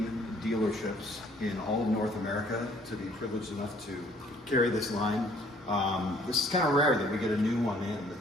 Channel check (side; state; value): both; normal; correlation 0.60